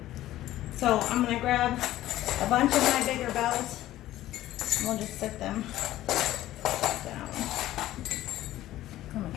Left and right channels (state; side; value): quieter; right; 14.6 dB